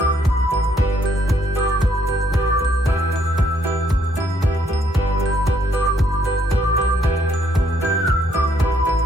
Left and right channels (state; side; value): normal; both; correlation 0.69